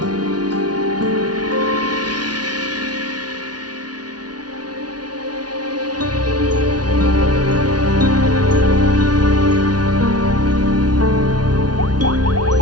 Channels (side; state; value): left; late; 0.69 ms